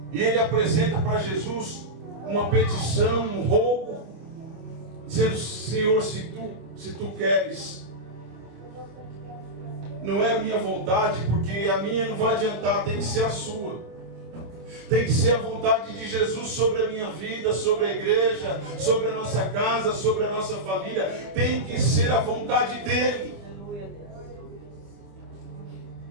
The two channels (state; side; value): late; left; 26 ms